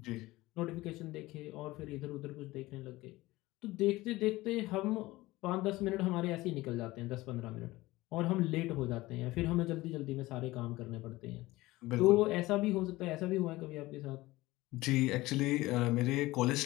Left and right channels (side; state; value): right; quieter; 19.0 dB